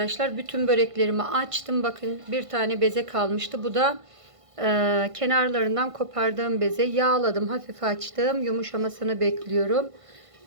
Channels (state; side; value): late; left; 1.5 ms